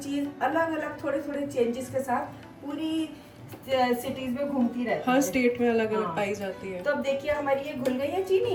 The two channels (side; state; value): both; identical; correlation 1.00